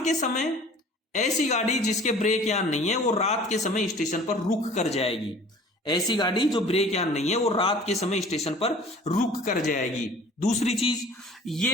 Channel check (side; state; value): both; normal; correlation 0.47